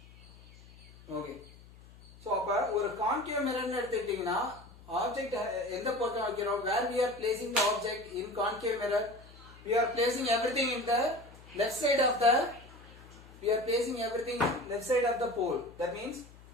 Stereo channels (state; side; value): noise; left; hum, 21 dB below the sound